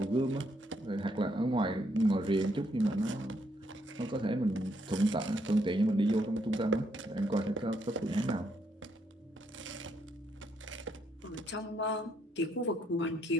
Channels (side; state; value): both; normal; correlation 0.74